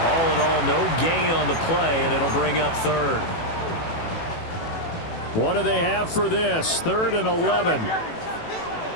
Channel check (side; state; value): right; late; 18 ms